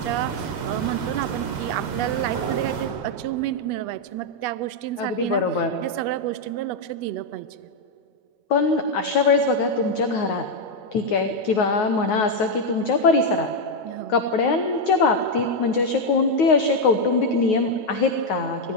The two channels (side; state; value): right; late; 9.4 ms